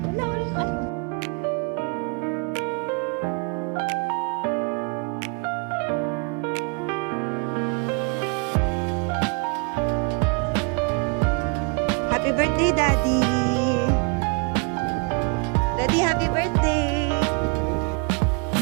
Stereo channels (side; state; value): left; quieter; 33.9 dB